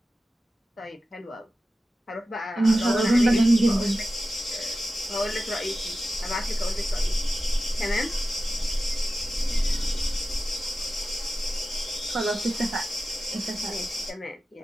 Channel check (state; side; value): normal; both; correlation 0.93